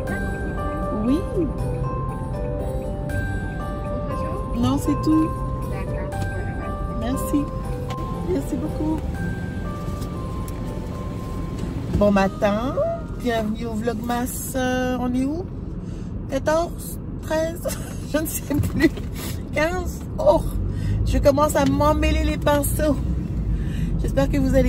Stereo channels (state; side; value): identical; both; correlation 1.00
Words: Oui. Non, c'est tout. Merci. Merci beaucoup. Bon matin. Bienvenue au Vlogmas. On est où? 14, 13, je ne sais plus. 15. Oh, je commence à m'emmêler les pinceaux. J'espère que vous